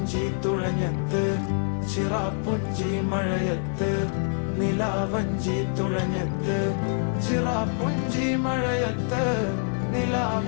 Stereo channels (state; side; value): silent; right; 61 dB below the other